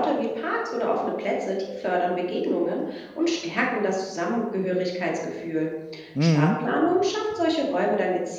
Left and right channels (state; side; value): identical; both; correlation 1.00